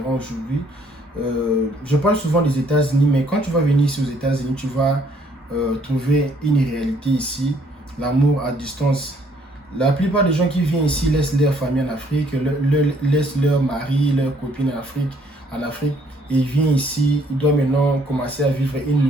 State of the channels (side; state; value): both; normal; correlation 0.65